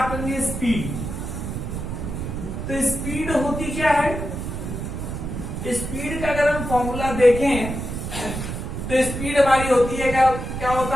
करेंगे स्पीड। तो स्पीड होती क्या है? स्पीड का अगर हम फॉर्मूला देखें तो स्पीड हमारी होती है क्या होता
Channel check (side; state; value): right; noise; rumble, 5 dB below the sound